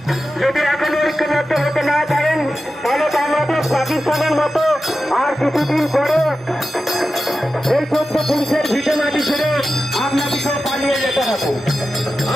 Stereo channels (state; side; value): normal; both; correlation 0.92